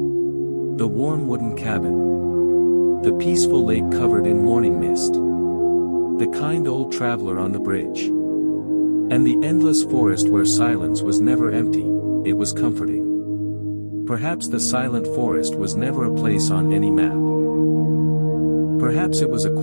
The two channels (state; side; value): inverted; both; correlation -1.00